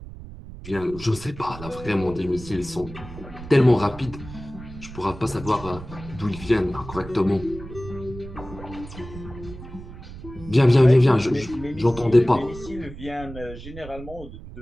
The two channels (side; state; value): right; noise; rumble, 14 dB below the sound